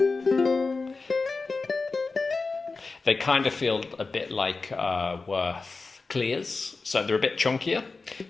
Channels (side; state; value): right; quieter; 4.0 dB